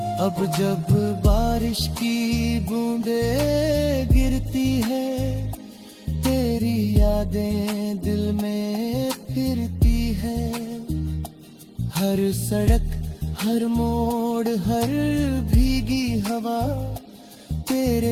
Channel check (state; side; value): identical; both; correlation 1.00